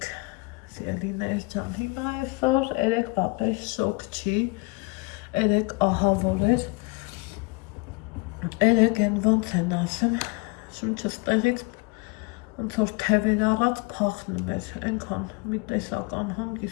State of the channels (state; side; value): quieter; right; 25.7 dB